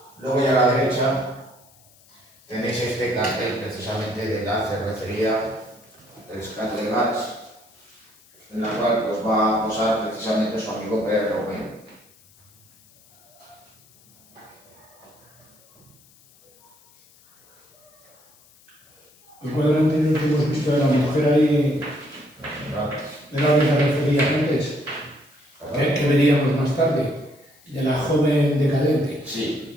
luego ya a la derecha tenéis este cartel precisamente de la cervecería Escato de Gas, en la cual pues, va a posar precisamente su amigo Pere Romeu. El cuadro anterior que hemos visto de la mujer ahí, de la que se refería antes, que veríamos más tarde, de la joven decadente.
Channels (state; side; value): noise; left; hiss, 29 dB below the sound